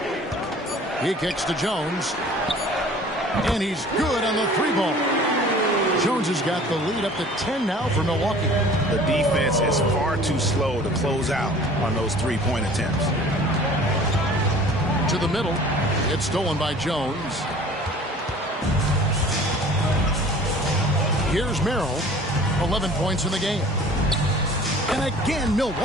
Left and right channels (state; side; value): normal; both; correlation 0.47